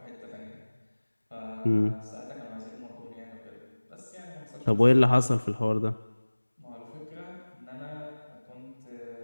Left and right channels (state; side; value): inverted; both; correlation -1.00